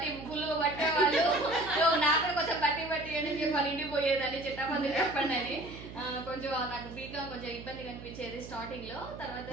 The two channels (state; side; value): noise; right; hum, 13 dB below the sound